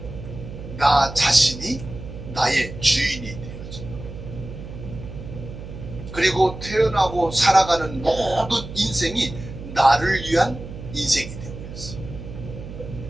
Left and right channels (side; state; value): right; noise; hum, 11 dB below the sound